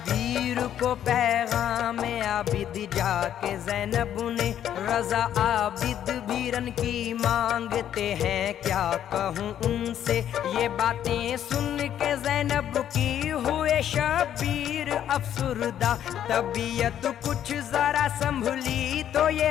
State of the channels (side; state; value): right; quieter; 10.4 dB